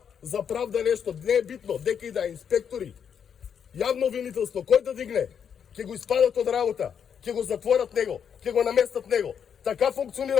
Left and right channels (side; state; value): right; quieter; 7.7 dB